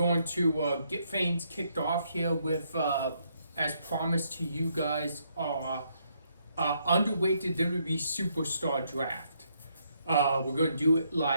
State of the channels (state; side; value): inverted; both; correlation -0.74